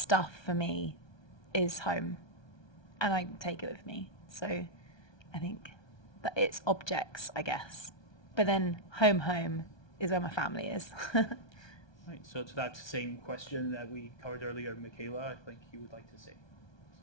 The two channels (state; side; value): late; right; 1.2 ms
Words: for me is home, and I take it with me. So I think that it's objects, I guess. But then home is where my family is. Right, so to that same question that we covered earlier, Michaela, I think you would like to say.